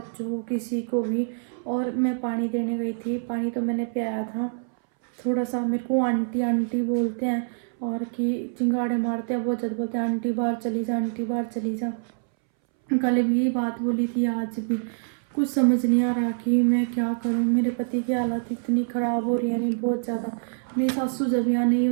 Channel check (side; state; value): left; silent; 61 dB below the other